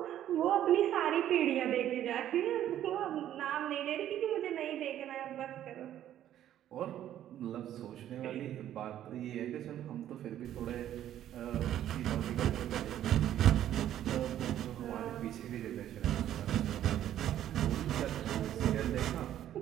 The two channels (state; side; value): quieter; left; 11.6 dB